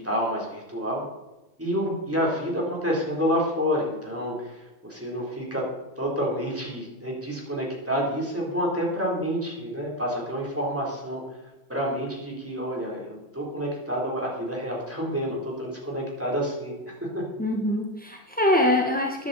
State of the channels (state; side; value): normal; both; correlation 0.14